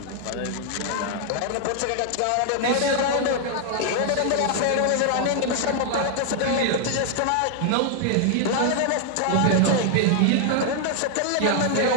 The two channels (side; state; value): both; different; correlation 0.00